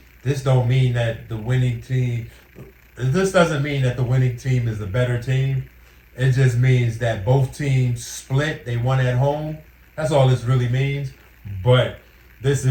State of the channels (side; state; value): both; identical; correlation 1.00